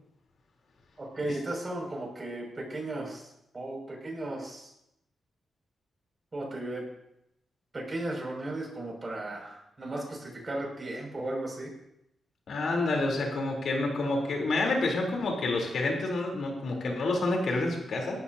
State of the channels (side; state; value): both; normal; correlation 0.85